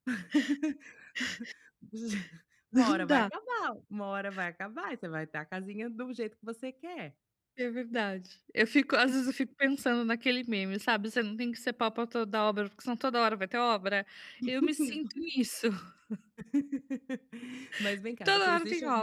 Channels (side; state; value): both; identical; correlation 1.00